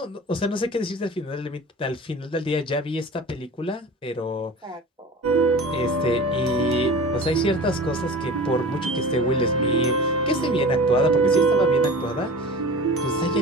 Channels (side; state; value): both; normal; correlation 0.37